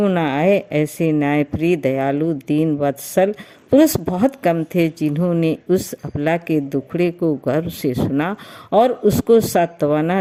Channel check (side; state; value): both; identical; correlation 1.00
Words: ना आए। ऐसे न्यायप्रिय, दयालु, दीन वत्सल पुरुष बहुत कम थे जिन्होंने उस अबला के दुखड़े को गर्व से सुना और उसको सांत्वना